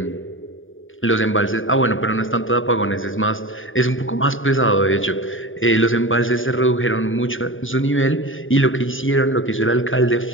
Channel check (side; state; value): right; late; 0.57 ms